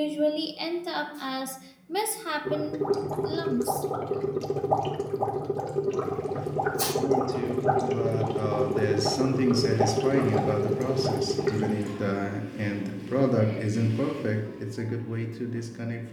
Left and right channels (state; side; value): identical; both; correlation 1.00